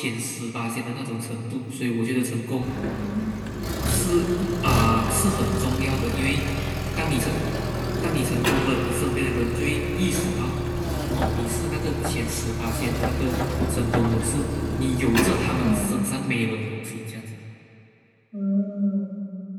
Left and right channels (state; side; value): identical; both; correlation 1.00